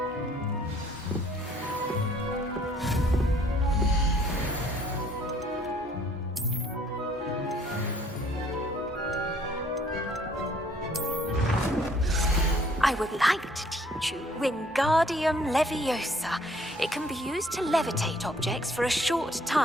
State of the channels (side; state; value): both; normal; correlation 0.60